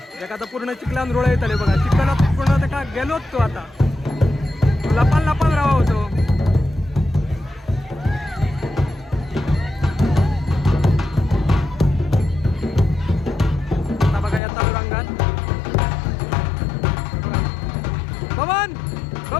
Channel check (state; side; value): drops out; right; at 14.4 s